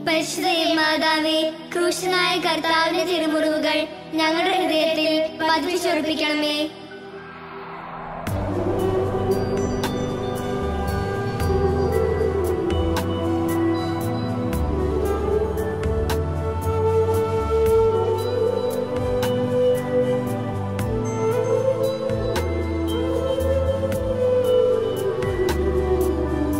പരിശുദ്ധ മാതാവേ, ക്രൂശനായ കർത്താവിന്റെ തിരുമുറിവുകൾ ഞങ്ങളുടെ ഹൃദയത്തിൽ പതിപ്പിച്ചുറപ്പിക്കണമേ.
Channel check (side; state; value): both; identical; correlation 1.00